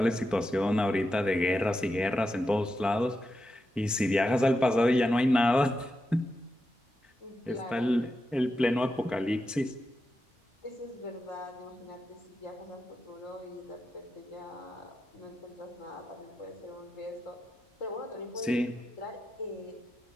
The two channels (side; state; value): both; normal; correlation 0.88